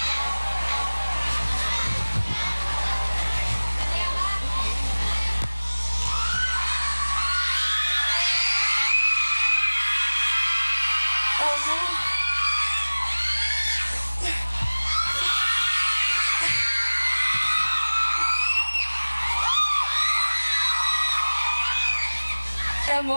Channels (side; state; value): both; inverted; correlation -1.00